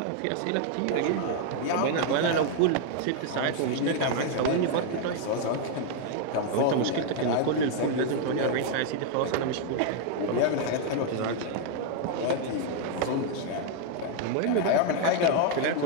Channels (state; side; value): different; both; correlation 0.00